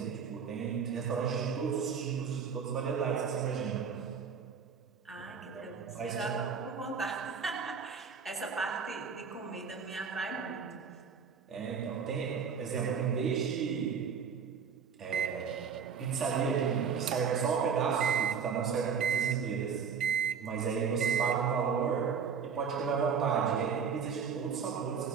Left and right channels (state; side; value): quieter; left; 6.4 dB